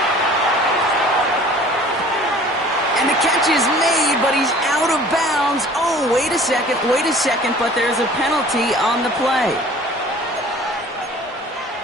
And the catch is made, but he's out of bounds. Oh, wait a second, but there's a penalty on the play.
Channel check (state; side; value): normal; both; correlation 0.48